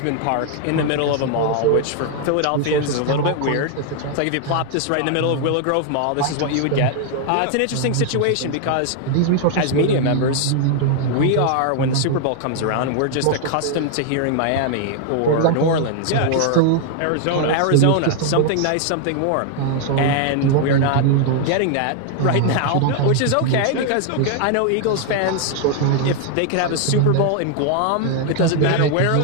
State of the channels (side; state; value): both; different; correlation 0.00